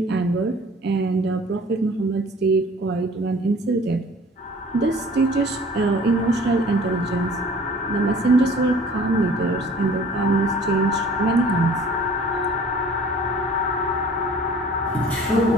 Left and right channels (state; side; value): normal; both; correlation 0.49